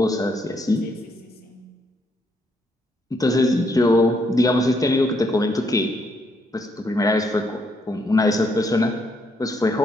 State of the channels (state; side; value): normal; both; correlation 0.74